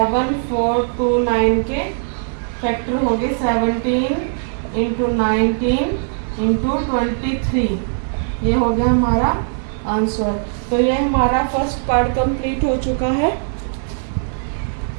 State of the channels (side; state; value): left; silent; digital silence